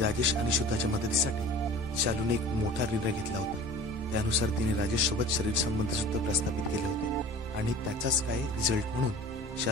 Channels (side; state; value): both; normal; correlation 0.41